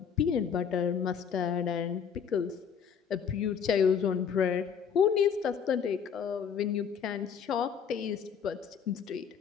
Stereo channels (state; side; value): quieter; right; 7.3 dB